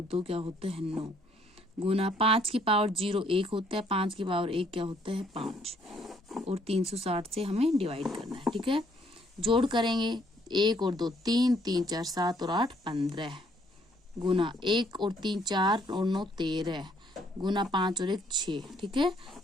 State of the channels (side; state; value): both; normal; correlation 0.66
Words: 2 क्या होता है 9 गुना 5 की पावर 0 1 होता है, 5 की पावर 1 क्या होता है 5 और 360 से हमें डिवाइड करना है। ठीक है, जोड़ करेंगे, 1 और 2 3, 3 4 7 और 8 15 गुना 1 और 3 4 और 9 13 गुना 5 और 1 6। ठीक है,